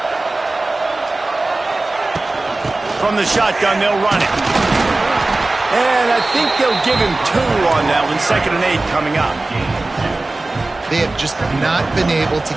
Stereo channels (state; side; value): quieter; left; 3.0 dB